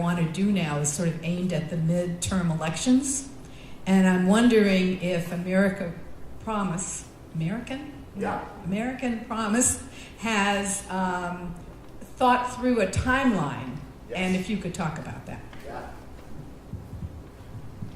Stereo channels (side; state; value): both; identical; correlation 1.00